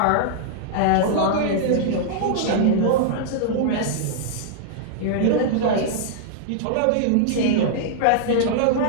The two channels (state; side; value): different; both; correlation -0.01